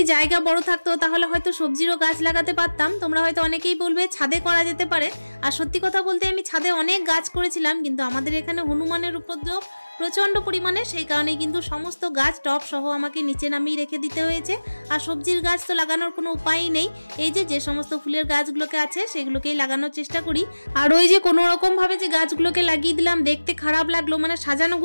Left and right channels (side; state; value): both; inverted; correlation -1.00